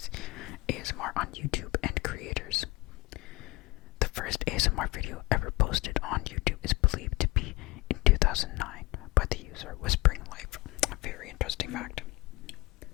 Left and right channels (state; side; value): quieter; right; 21.6 dB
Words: first ASMR video ever posted on YouTube is believed to be in 2009 by the user Whispering Life. A very interesting fact.